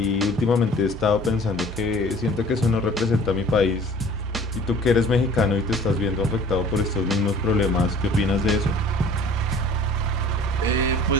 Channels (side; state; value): both; normal; correlation 0.49